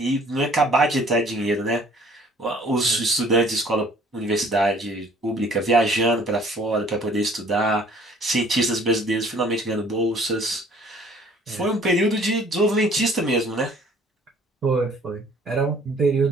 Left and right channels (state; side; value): normal; both; correlation 0.55